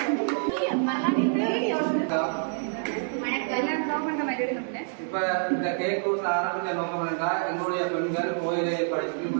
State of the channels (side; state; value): left; silent; 57 dB below the other